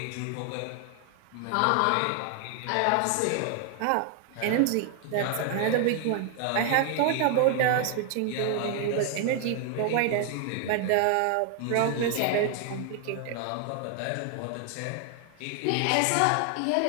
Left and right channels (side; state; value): both; different; correlation 0.00